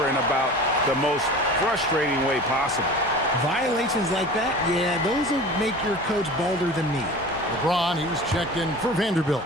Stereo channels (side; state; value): both; normal; correlation 0.38